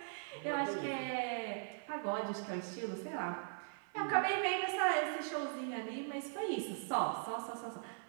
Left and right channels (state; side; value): silent; left; 51 dB below the other